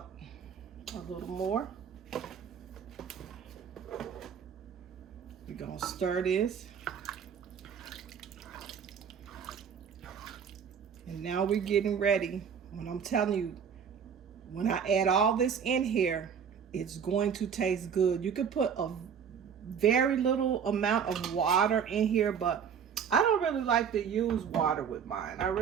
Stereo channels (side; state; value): left; quieter; 7.3 dB